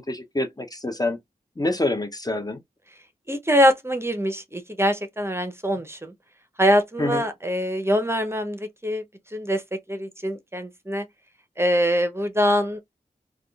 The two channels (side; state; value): both; normal; correlation 0.73